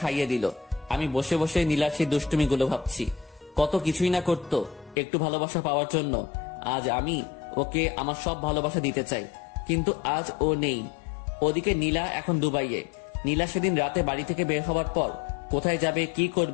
খাইয়ে দিল। আমি বসে বসে নীলার সেই দুষ্টুমিগুলো ভাবছি। কত কিছুই না করতো একটু ভালোবাসা পাওয়ার জন্য। আজ আমি ওকে আমার সব ভালোবাসা দিতে চাই, কিন্তু আজ ও নেই। ওদিকে নীলা এখন দুবাইয়ে। নীলা সেদিন রাতে বাড়ি থেকে বের হওয়ার পর কোথায় যাবে, কি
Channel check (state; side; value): drops out; right; at 5.0 s